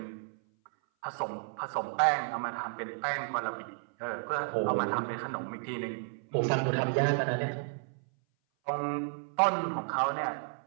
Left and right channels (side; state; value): left; silent; 56 dB below the other